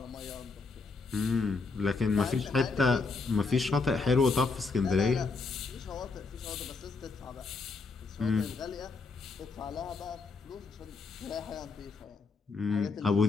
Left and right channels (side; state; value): right; quieter; 4.2 dB